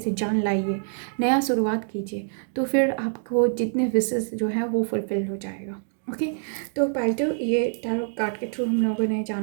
जान लाइए, नया शुरुआत कीजिए। तो फिर आपको जितने विशेस जो है वो फुलफिल हो जाएगा। ओके, तो पाइल ये टैरो कार्ड के थ्रू हम लोगों ने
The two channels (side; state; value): left; silent; digital silence